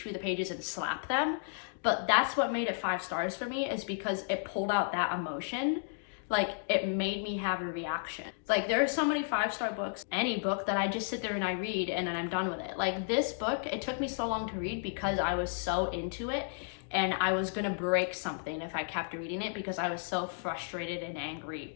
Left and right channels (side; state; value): right; silent; digital silence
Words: through the pages and slap them. But that's what made it 5 stars for me, is because it pulled out that emotion. Like, it made me have a reaction. Like, there are so many 5-star books, any book, that I just sit there and I read and then I'm done with it. Like, this book, it took me so long to read because I was so into it. And I was gonna break something if I kept reading it because I was so frustrated and angry.